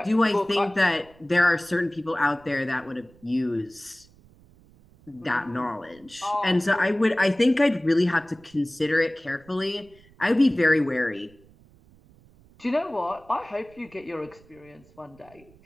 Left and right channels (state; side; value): noise; right; rumble, 27 dB below the sound